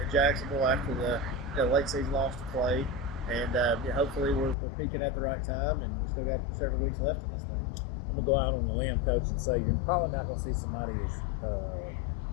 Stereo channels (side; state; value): right; drops out; at 4.5 s